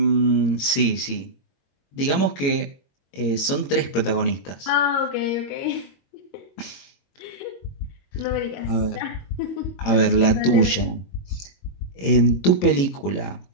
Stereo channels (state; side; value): late; right; 22 ms